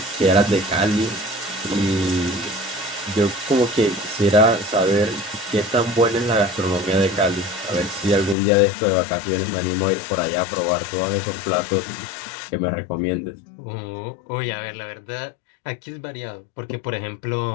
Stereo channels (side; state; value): right; drops out; at 8.3 s